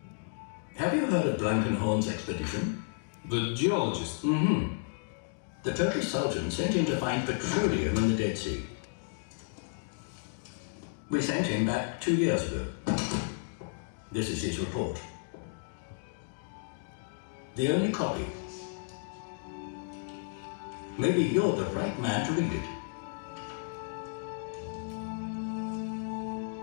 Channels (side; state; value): right; silent; digital silence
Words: Have you heard of Blankenhorn's expedition? The geologist. The Turkish Sultan sent him to find petroleum in the Dead Sea. We sent him back 2 years ago. This is his report. The only copy. Maybe you're the right man to read it.